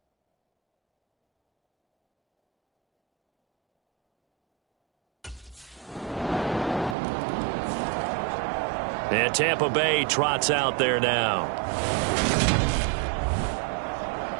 And Tampa Bay trots out there now.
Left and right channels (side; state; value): left; drops out; at 7.0 s